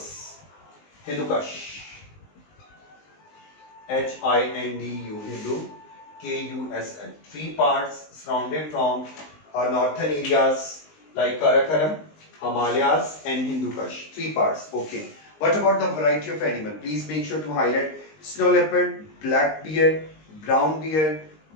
Hindu Kush, HINDU, Hindu, KUSL. Three parts surrounded from our northern areas like Karakoram, Himalayas and Hindu Kush. Three parts. Okay. What about the variety of animal? Please make sure to highlight snow leopard, black bear, brown bear,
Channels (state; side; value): late; right; 19 ms